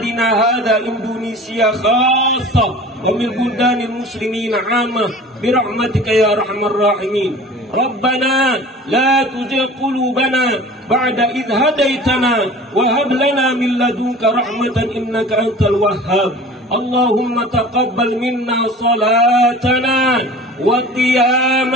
هذا إندونيسيا خاصة ومن بلدان المسلمين عامة برحمتك يا أرحم الراحمين. ربنا لا تزغ قلوبنا بعد إذ هديتنا وهب لنا من لدنك رحمة إنك أنت الوهاب اللهم تقبل منا صلاتنا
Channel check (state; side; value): normal; both; correlation 0.41